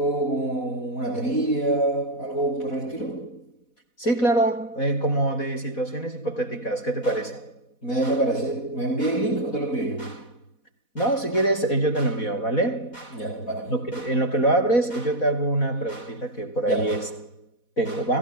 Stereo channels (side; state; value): right; late; 4.1 ms